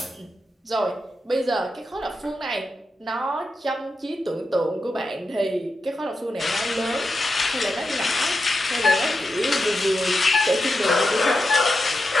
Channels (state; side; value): normal; both; correlation 0.88